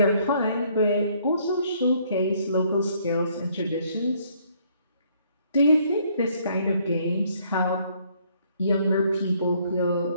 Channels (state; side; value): inverted; both; correlation -0.66